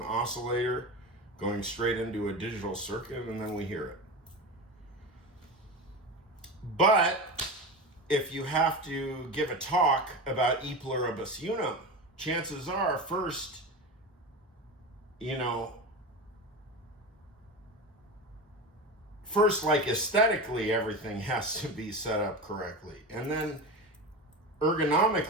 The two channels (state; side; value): normal; both; correlation 0.25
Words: oscillator going straight into a digital circuit, and then we hear it. But if you have to give a talk about E Pluribus Unum, chances are first, like aesthetically, everything has to be set up correctly, and then